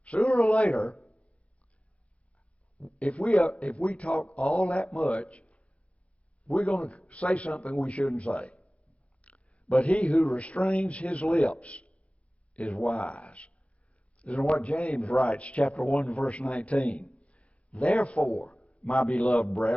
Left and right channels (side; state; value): right; late; 0.063 ms